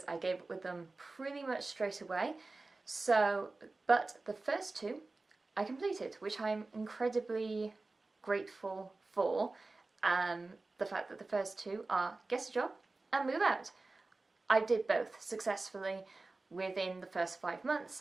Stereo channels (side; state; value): left; quieter; 3.4 dB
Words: I gave up with them pretty much straight away. But the first two I completed, which I'm incredibly grateful for. The fact that the first two are get a job and move out. I did both successfully within the first 5 months.